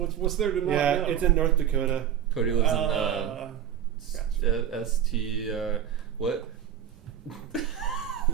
there to not Yeah, know? it's in North Dakota. Cody lives in Gotcha. ST. What?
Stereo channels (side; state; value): left; quieter; 9.9 dB